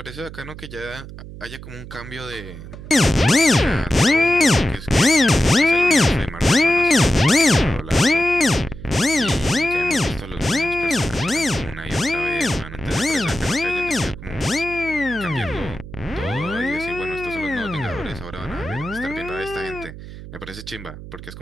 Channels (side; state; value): right; noise; hum, 13 dB below the sound